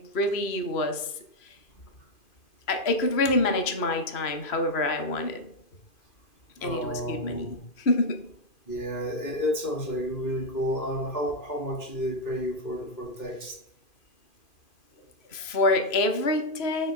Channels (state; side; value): late; right; 2.5 ms